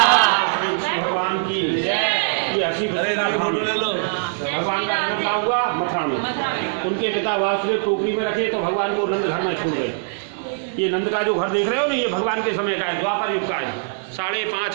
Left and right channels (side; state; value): left; silent; digital silence